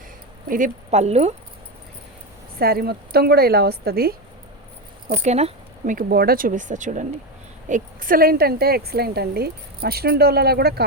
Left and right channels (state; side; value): normal; both; correlation 0.14